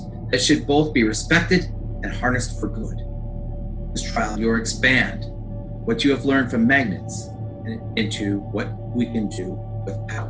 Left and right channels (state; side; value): identical; both; correlation 1.00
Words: that should both be respected and harnessed for good. This trial, you'll expand what you have learned from magnets into what we can do with